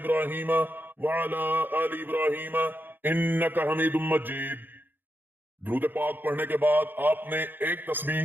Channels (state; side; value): late; left; 0.092 ms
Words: وعلی آل ابراہیم انک حمید مجید۔ درود پاک پڑھنے کے بعد آپ نے ایک تسبیح